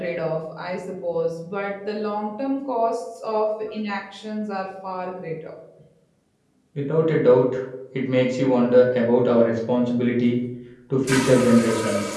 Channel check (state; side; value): identical; both; correlation 1.00